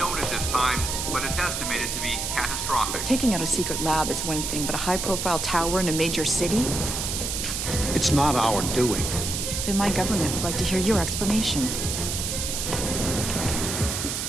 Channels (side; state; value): right; noise; hiss, 3 dB below the sound